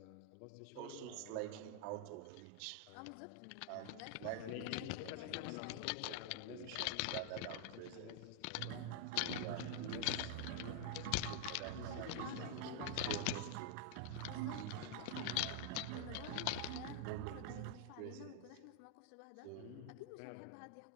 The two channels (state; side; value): different; both; correlation -0.01